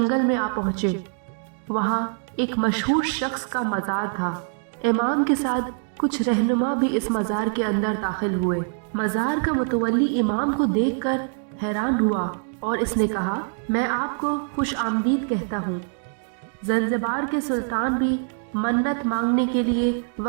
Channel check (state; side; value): silent; left; 58 dB below the other